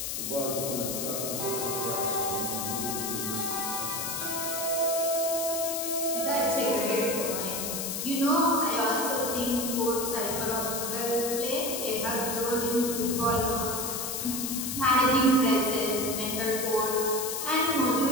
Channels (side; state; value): left; noise; hiss, 3 dB below the sound